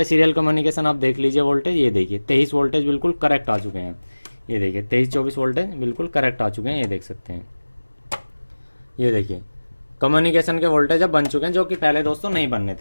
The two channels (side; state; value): both; inverted; correlation -1.00